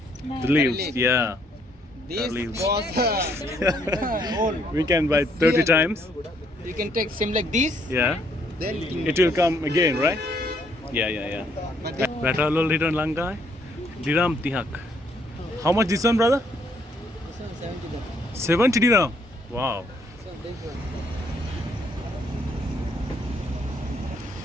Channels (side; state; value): both; normal; correlation 0.68